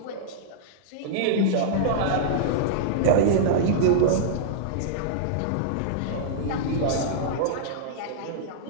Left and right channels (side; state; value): both; different; correlation -0.02